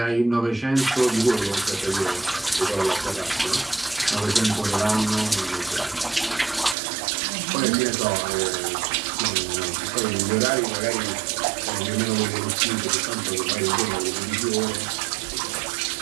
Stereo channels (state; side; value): drops out; left; at 6.8 s